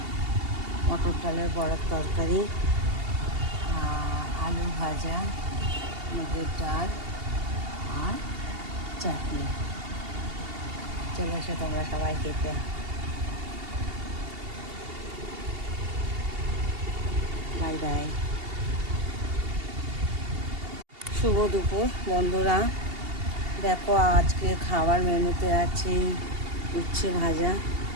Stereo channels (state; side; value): late; left; 2.8 ms